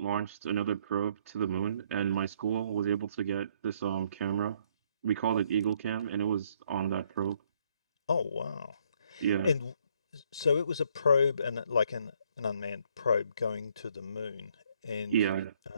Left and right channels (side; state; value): both; inverted; correlation -0.67